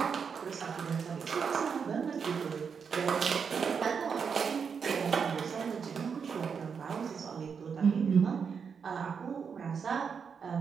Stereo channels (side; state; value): left; quieter; 6.3 dB